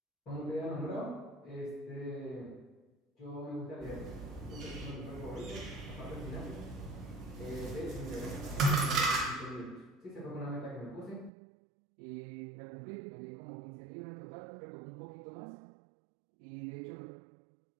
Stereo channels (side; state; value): left; drops out; at 11.3 s